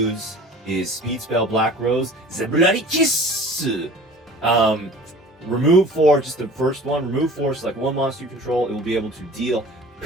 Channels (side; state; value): both; normal; correlation 0.43